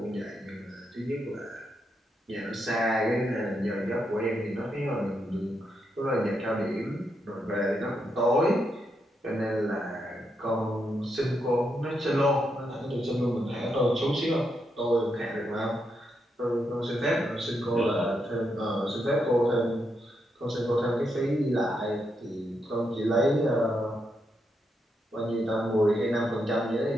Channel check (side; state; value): both; normal; correlation 0.81